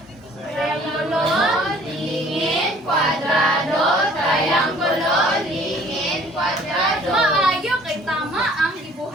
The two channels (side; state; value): both; normal; correlation 0.54